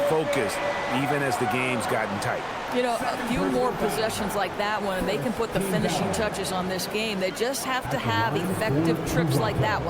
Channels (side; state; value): both; identical; correlation 1.00